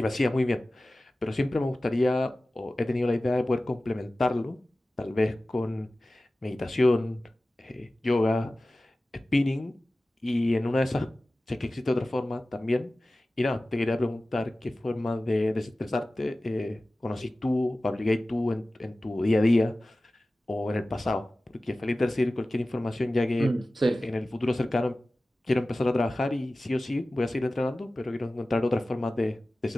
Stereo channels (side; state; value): both; normal; correlation 0.96